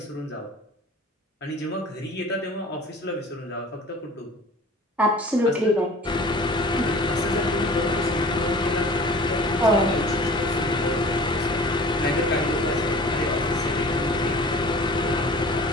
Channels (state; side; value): normal; both; correlation 0.44